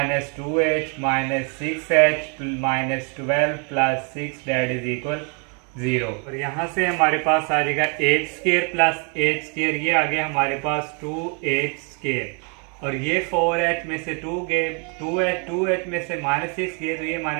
two H minus six H minus 12 plus six, that is equal zero. और यहाँ से हमारे पास आ जाएगा H square plus H square, ये आ गया हमारे पास टू एच स्केयर, और ये फोर एच में से टू गए, टू एच में से माइनस सिक्स गए, तो ये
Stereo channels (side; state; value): left; quieter; 37.1 dB